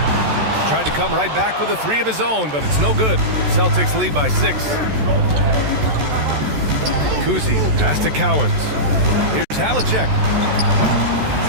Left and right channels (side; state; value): left; late; 14 ms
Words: Tried to come right back with a 3 of his own, but it's no good. Celtics lead by 6. Kuzi, pass to Cowens. Here's Havlicek.